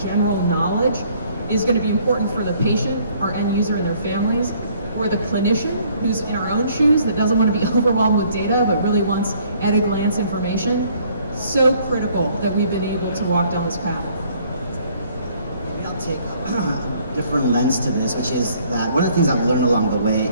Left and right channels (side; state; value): both; inverted; correlation -0.61